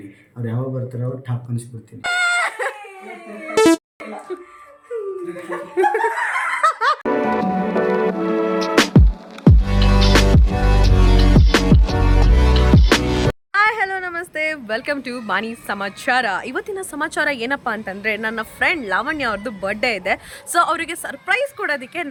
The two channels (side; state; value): both; identical; correlation 1.00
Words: ಅವ್ರು ಯಾವಾಗ ಬರ್ತಾರೋ ಅವ್ರು ಟಾಪ್ ಅನಿಸ್ಬಿಡ್ತೀನಿ. ವೆಲ್ಕಮ್ ಟು ಬಾನಿ ಸಮಾಚಾರ. ಇವತ್ತಿನ ಸಮಾಚಾರ ಏನಪ್ಪ ಅಂತಂದರೆ, ನನ್ನ ಫ್ರೆಂಡ್ ಲಾವಣ್ಯ ಅವ್ರದ್ದು ಬರ್ಡೇ ಇದೆ. ಸೊ ಅವರಿಗೆ ಸರ್ಪ್ರೈಸ್ ಕೊಡೋದಕ್ಕೆ